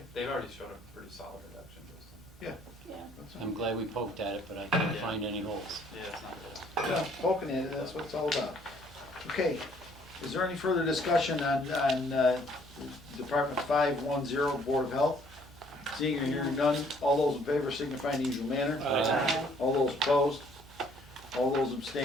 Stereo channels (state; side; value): normal; both; correlation 0.62